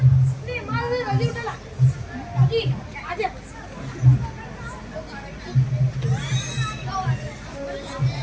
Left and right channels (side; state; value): both; identical; correlation 1.00